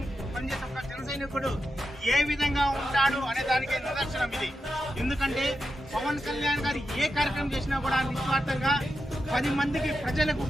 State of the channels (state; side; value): normal; both; correlation 0.88